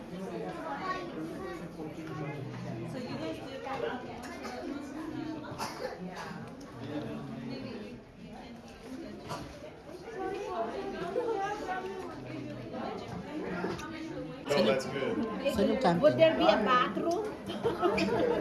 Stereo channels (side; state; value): both; identical; correlation 1.00